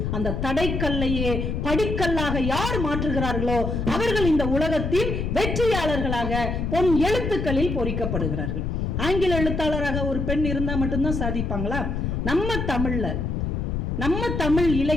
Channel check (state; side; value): noise; left; rumble, 2 dB below the sound